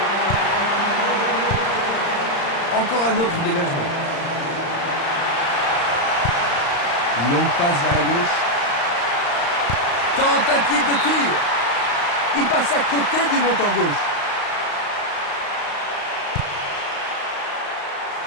Encore un autre dégagement. Une longue passe vers la gauche. Tentative de tir. Il passe à côté du montant gauche.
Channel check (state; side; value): late; right; 35 ms